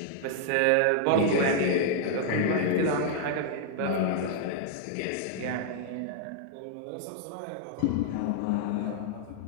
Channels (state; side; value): different; both; correlation -0.01